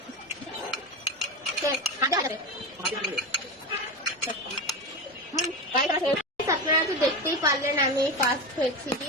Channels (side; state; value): both; normal; correlation 0.21